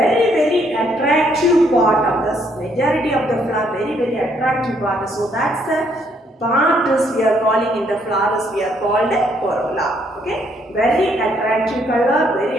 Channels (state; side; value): normal; both; correlation 0.70